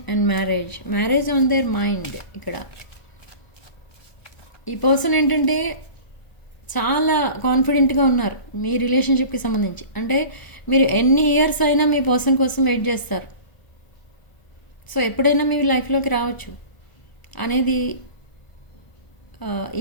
and marriage on their mind. ఇక్కడ ఈ person ఏంటంటే చాలా కాన్ఫిడెంట్గా ఉన్నారు మీ రిలేషన్షిప్కి సంబంధించి. అంటే మీరు ఎన్ని ఇయర్స్ అయినా మీ పర్సన్ కోసం వెయిట్ చేస్తారు. సో ఎప్పుడైనా మీ లైఫ్లోకి రావచ్చు అనేది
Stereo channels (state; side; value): late; right; 1.4 ms